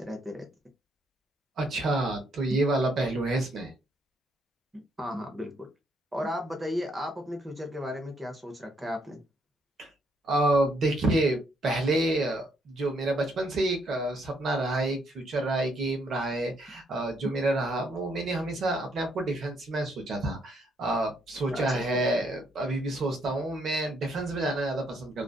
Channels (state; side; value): normal; both; correlation 0.71